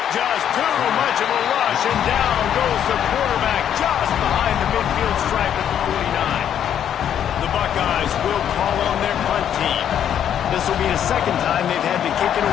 Just too much of a rush, and down goes the quarterback just behind the midfield stripe at the 49. The Buckeyes will call on their punt team. This will be the second time they've had to kick it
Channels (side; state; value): right; quieter; 9.6 dB